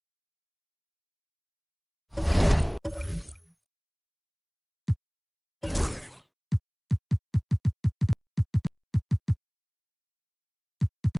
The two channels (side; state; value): both; identical; correlation 1.00